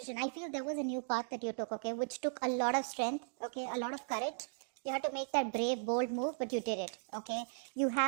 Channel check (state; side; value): silent; left; digital silence